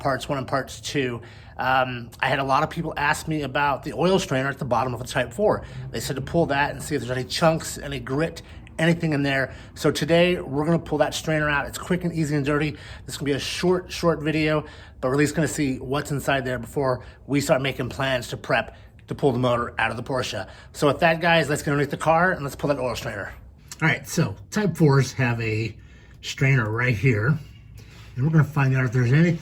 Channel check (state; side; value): identical; both; correlation 1.00